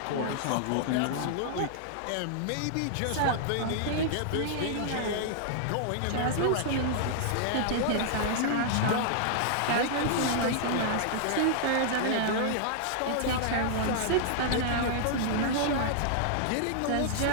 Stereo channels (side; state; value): both; different; correlation -0.01